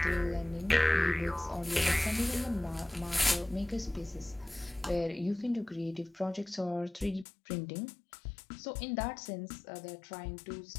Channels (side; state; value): right; drops out; at 7.2 s